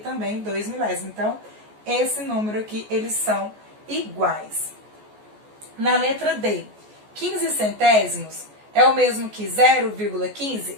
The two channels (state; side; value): late; left; 14 ms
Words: 2 milésimos. Então, esse número aqui, eles são iguais. Na letra D, 15 centésimos é o mesmo que 0,15?